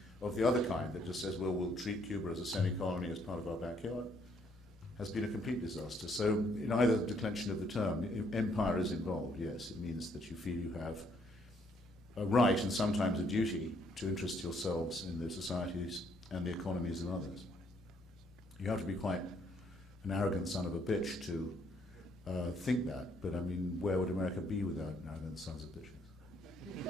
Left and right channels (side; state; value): both; normal; correlation 0.69